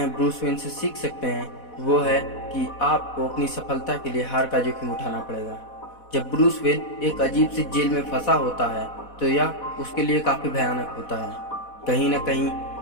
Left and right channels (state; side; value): late; right; 4.1 ms